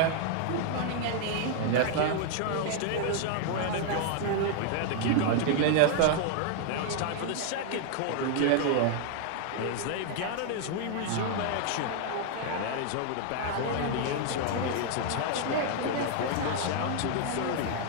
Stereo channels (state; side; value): different; both; correlation 0.00